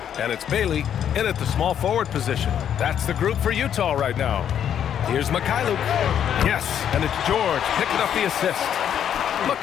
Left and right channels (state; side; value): quieter; right; 9.3 dB